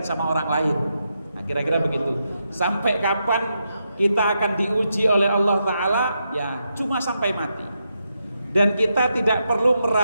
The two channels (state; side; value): inverted; both; correlation -0.84